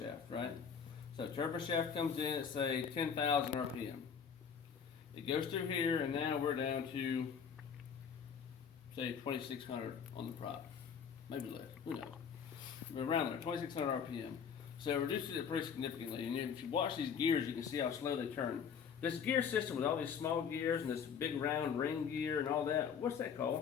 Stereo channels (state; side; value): quieter; right; 7.0 dB